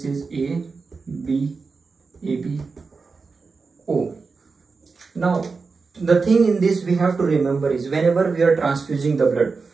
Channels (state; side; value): quieter; left; 4.5 dB